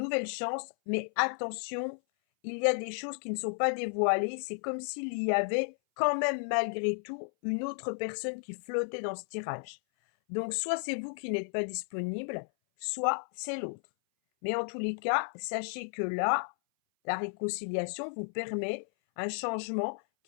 chance, mais attention, il y a des choses qui ne sont pas dévoilées. C'est comme s'il y avait quand même malgré tout une autre personne qui flottait dans ce tirage. Donc soit c'est vous qui n'êtes pas disponible, soit c'est l'autre. Mais en tous les cas, sachez que là, la réconciliation vous permet un changement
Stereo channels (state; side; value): silent; right; 56 dB below the other